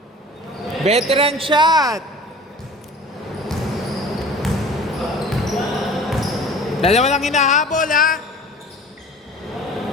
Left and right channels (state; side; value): normal; both; correlation 0.43